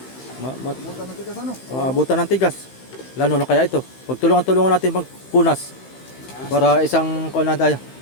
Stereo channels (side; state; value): right; late; 15 ms